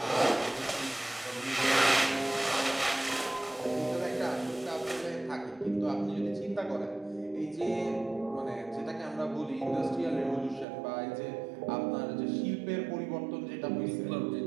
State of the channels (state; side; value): drops out; left; at 10.7 s